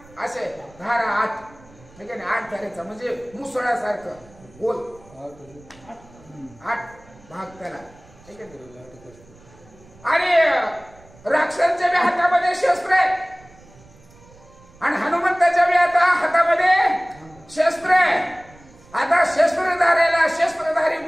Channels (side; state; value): right; noise; rumble, 25 dB below the sound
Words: असे धारा 8 ठीक आहे ना. 8 धारेचा म्हणजे मुसळासारखं गोल 8 भाग त्याला ठीक आहे. आणि राक्षसांच्या बी हातामध्ये शस्त्र आहे आणि हनुमंताच्या बी आता हातामध्ये शस्त्र आहे. आता शस्त्रधारी